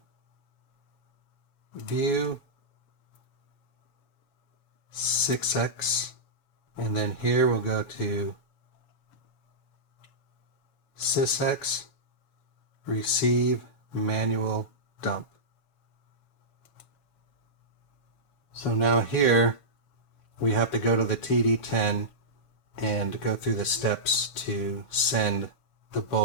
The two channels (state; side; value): late; right; 7.1 ms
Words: View, 6x, and then here we'll go to sysx, receive manual dump. So now here we have to go to the TD-10 and go through the steps to send the